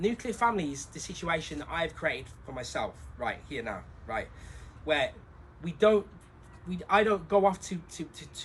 nuclear family is the situation that I've created for myself right here now, right, where I don't go off to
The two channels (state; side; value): identical; both; correlation 1.00